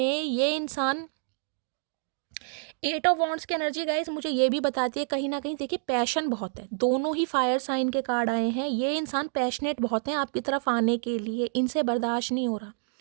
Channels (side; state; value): left; silent; digital silence